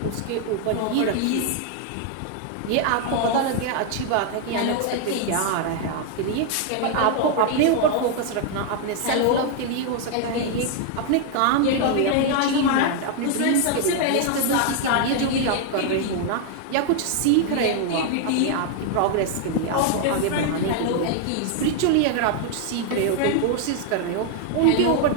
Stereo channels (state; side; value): different; both; correlation 0.00